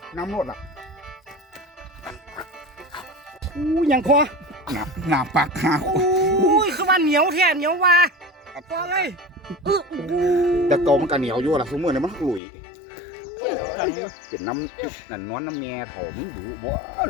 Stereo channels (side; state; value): right; drops out; at 12.4 s